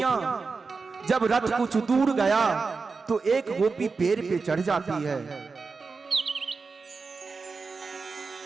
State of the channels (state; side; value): quieter; left; 4.5 dB